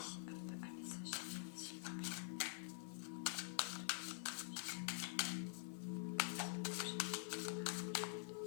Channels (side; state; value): right; silent; digital silence